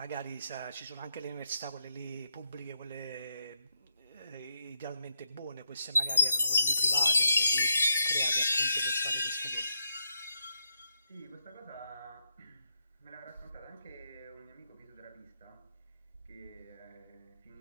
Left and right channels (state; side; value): inverted; both; correlation -0.83